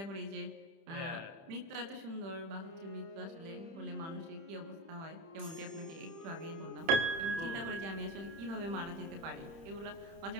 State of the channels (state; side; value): late; left; 30 ms